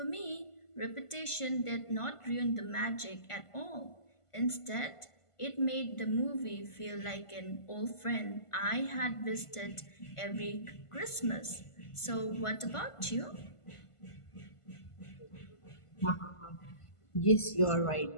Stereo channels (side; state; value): right; late; 1.5 ms